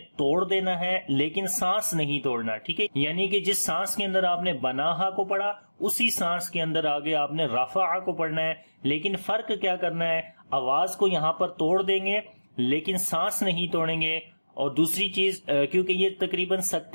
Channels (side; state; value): both; inverted; correlation -1.00